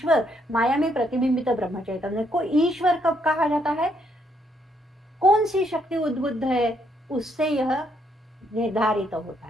माया में प्रतिबिंबित ब्रह्म चैतन्य को ईश्वर कब कहा जाता है? कौन सी शक्ति उद्बुद्ध है, उससे यह निर्धारित होता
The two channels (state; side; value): normal; both; correlation 0.73